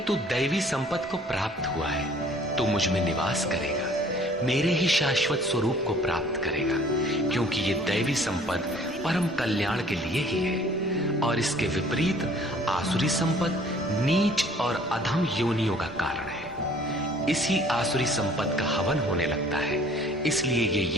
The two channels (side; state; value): both; normal; correlation 0.54